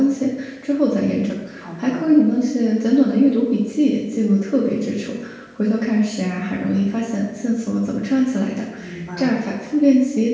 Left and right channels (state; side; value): identical; both; correlation 1.00